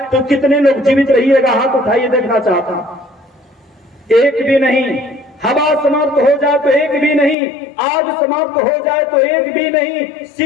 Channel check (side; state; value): right; drops out; at 7.4 s